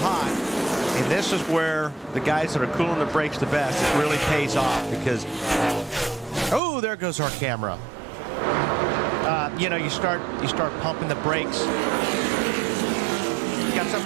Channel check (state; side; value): drops out; left; at 6.6 s